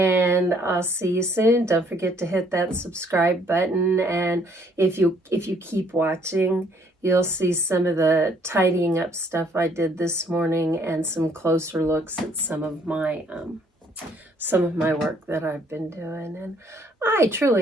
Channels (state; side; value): normal; both; correlation 0.64